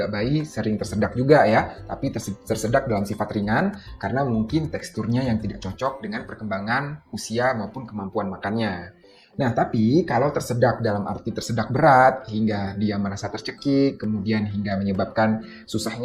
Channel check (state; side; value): identical; both; correlation 1.00